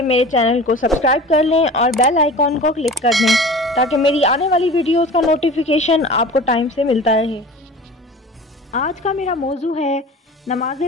میرے چینل کو سبسکرائب کر لیں اور بیل آئیکن کو کلک کر دیں تاکہ میری آنے والی ویڈیوز کا نوٹیفیکیشن آپ کو ٹائم سے ملتا رہے۔ آج کا میرا موضوع ہے نماز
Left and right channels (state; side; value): normal; both; correlation 0.38